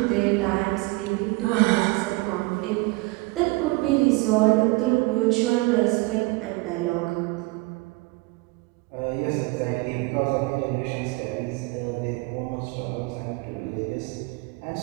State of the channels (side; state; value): left; quieter; 24.1 dB